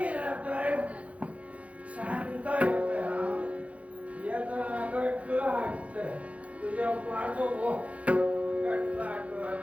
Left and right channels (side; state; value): left; late; 0.065 ms